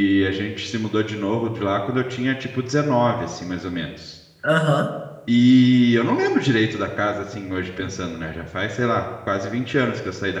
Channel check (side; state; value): both; identical; correlation 1.00